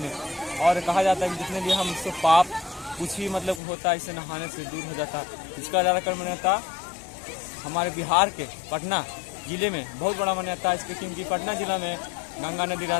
और कहा जाता है कि जितने भी हम इससे पाप कुछ भी मतलब होता है, इसे नहाने से दूर हो जाता है। इसका ज़्यादातर मान्यता हमारे बिहार के पटना जिले में बहुत बड़ा मान्यता है इसके, क्योंकि पटना जिला में गंगा नदी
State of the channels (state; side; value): drops out; right; at 3.6 s